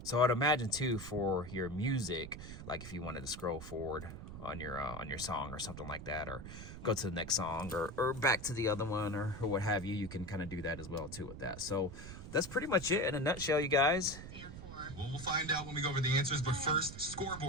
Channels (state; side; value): noise; right; rumble, 11 dB below the sound